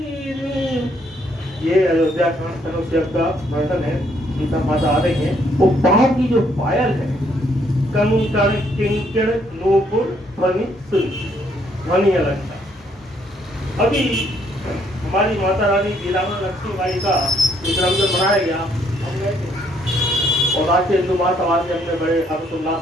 ये अयोध्या कांड तनुष्यक का वर्णन है, सीता माता आ रही है। वो बाहर की जो पायल है, कंकड़ किंकड़ नूपुर ध्वनि ध्वनि अलंकार। अभी हमारी माता रानी वीरांगना लक्ष्मीबाई का जन्मदिन मनाया गया, हम गए थे और राष्ट्रीय हिंदू महासभा से हमने बड़े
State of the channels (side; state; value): both; normal; correlation 0.69